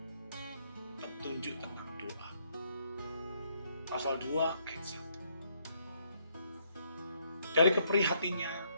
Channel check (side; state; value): both; inverted; correlation -0.72